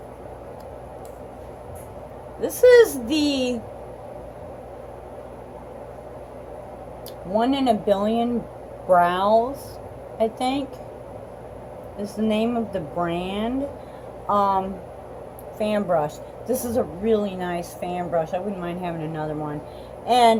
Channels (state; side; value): identical; both; correlation 1.00